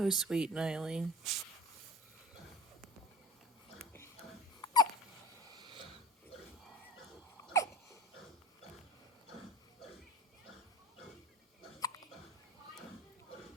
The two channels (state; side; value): normal; both; correlation 0.38